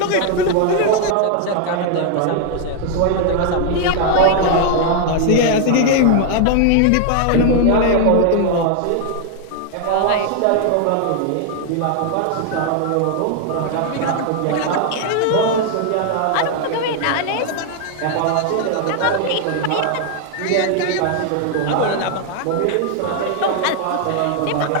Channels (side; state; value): both; different; correlation 0.00